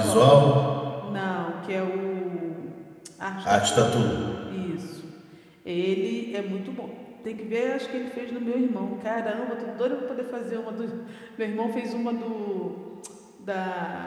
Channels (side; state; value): both; identical; correlation 1.00